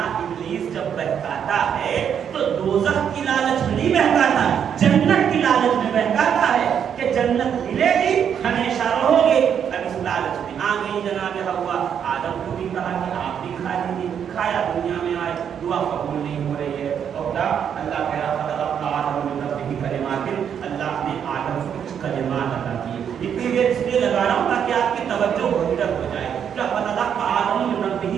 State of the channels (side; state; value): left; quieter; 8.2 dB